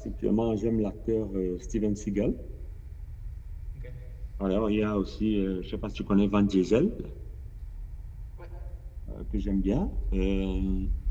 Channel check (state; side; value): identical; both; correlation 1.00